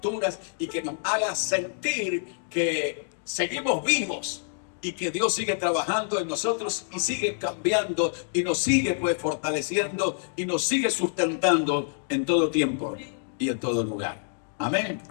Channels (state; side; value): silent; right; digital silence